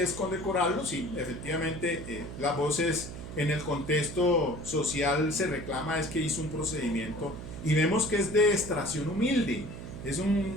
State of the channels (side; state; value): right; noise; hum, 10 dB below the sound